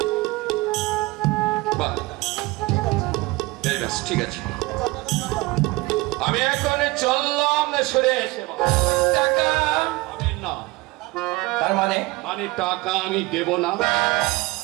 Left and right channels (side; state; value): left; quieter; 22.5 dB